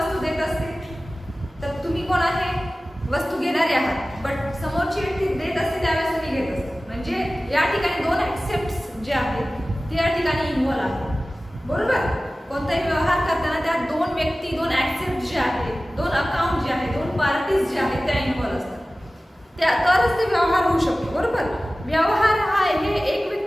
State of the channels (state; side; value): normal; both; correlation 0.97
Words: देत असते, तर तुम्ही कोण आहे? वस्तू घेणारे आहात, बट समोरची व्यक्ती देत असते त्यावेळेस तुम्ही घेत असतो. म्हणजे या ठिकाणी दोन ऍक्सेप्ट्स जे आहेत ते या ठिकाणी इन्व्हॉल्व आहेत, बरोबर. कोणताही व्यवहार करताना त्या दोन व्यक्ती, दोन ऍक्सेप्ट जे आहेत, दोन अकाउंट जे आहेत, दोन पार्टीज जे आहेत त्या इन्व्हॉल्व असतात. त्या तरच ते व्यवहार होऊ शकतो, बरोबर. व्यवहार हा हे एक